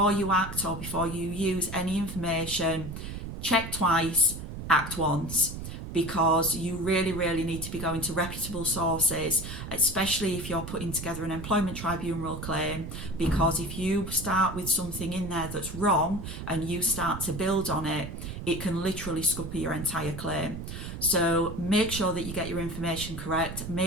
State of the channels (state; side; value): noise; right; rumble, 8 dB below the sound